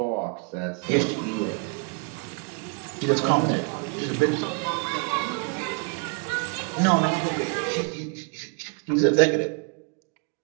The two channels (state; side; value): quieter; left; 37.0 dB